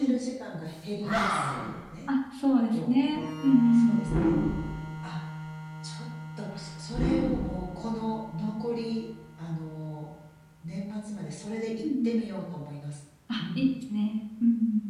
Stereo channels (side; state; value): both; identical; correlation 1.00